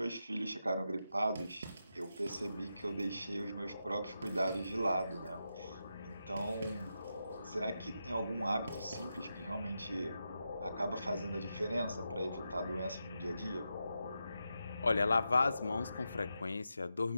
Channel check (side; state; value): both; inverted; correlation -0.87